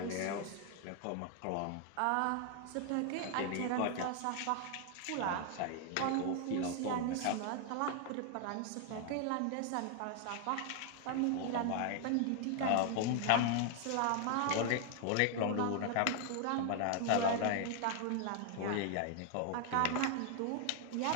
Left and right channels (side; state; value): both; different; correlation 0.00